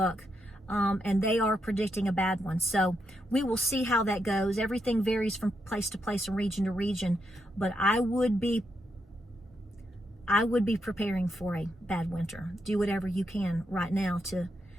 and they are predicting a bad one. So we will see how that goes. Everything varies from place to place and region to region, but I would be preparing for a bad winter. Do whatever you can right now to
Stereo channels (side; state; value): both; normal; correlation 0.81